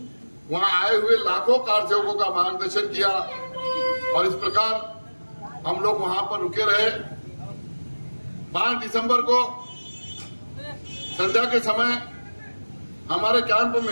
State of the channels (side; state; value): both; inverted; correlation -1.00